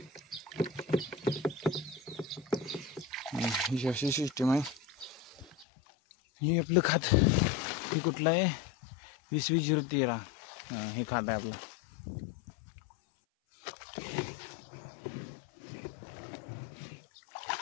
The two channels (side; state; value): right; drops out; at 5.7 s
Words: अशी सिस्टीम आहे. हे आपलं खात हे कुठलं आहे, 2020-013. हे खात आहे आपलं.